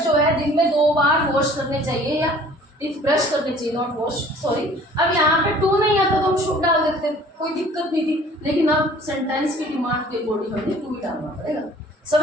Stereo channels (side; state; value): both; normal; correlation 0.51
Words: जो है दिन में 2 बार वॉश करने चाहिए, या ब्रश करने चाहिए, नॉट वॉश, सॉरी। अब यहाँ पे टू नहीं आता तो हम शुड डाल देते, कोई दिक्कत नहीं थी, लेकिन अब सेंटेंस की डिमांड के अकॉर्डिंग हमें टू ही डालना पड़ेगा।